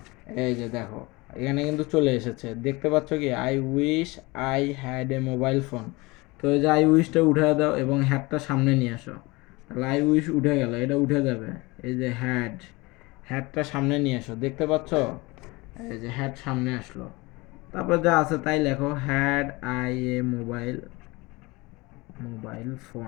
এই যে দেখো, এখানে কিন্তু চলে এসেছে, দেখতে পাচ্ছ কি? I wish I had a mobile phone. তো এই যে আই উইশটা উঠে দাও এবং হ্যাডটা সামনে নিয়ে আসো, তাহলে আই উইশ উঠে গেল, এটা উঠে যাবে। এই যে হ্যাডটা সামনে নিয়ে আসো, দেখতে পাচ্ছ? এই যে হ্যাড সামনে আসলো, তারপর যা আছে তাই লেখো, had I A mobile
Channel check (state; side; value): quieter; right; 23.7 dB